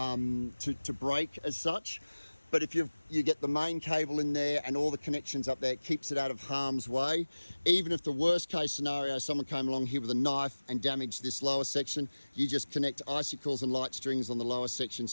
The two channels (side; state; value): both; inverted; correlation -1.00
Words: break as such, but if you get the main cable in there and all the connections up there, it keeps it out of harm's way. Even if the worst case scenario, someone came along here with a knife and damaged this lower section, you just connect icicles and light strings on the lower section,